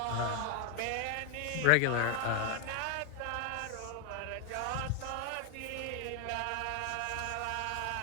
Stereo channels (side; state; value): both; different; correlation 0.01